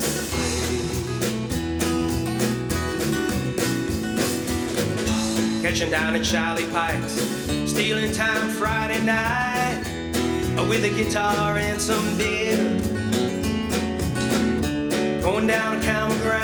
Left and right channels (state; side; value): identical; both; correlation 1.00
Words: play. Catching down at Charlie Pike's, stealing time Friday night, with a guitar and some beer. Going down to common